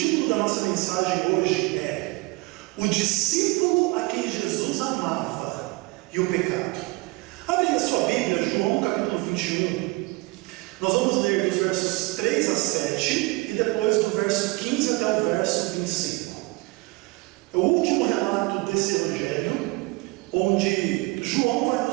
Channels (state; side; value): quieter; left; 24.3 dB